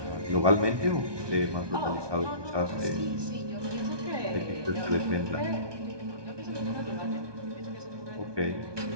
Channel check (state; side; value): late; left; 1.2 ms